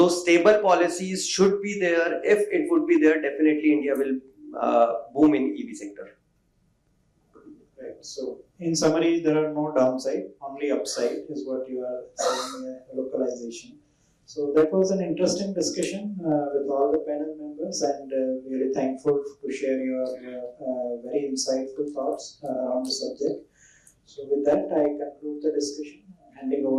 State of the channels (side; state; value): both; identical; correlation 1.00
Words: stable policies should be there. If it would be there, definitely India will boom in EV sector. Right. So in summary, there are no downside, only upside is what you are saying, localization. So that was an interesting discussion with all the panel members, and really thankful to share your very insightful thoughts on the subject. So with that, I conclude the discussion. Handing